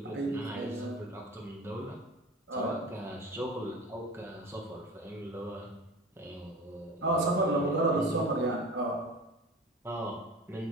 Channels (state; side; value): normal; both; correlation 0.35